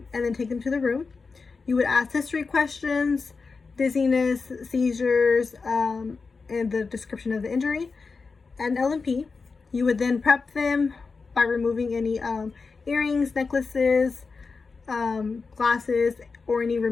then take them to the room. You would ask history questions, dizziness, seizures, and the description of the injury, and L&P. You would then prep them by removing any earrings, necklaces, glasses, or any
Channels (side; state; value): right; quieter; 4.6 dB